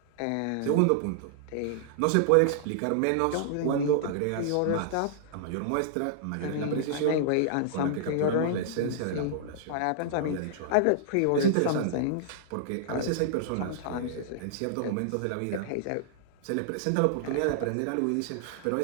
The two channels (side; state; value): both; different; correlation -0.01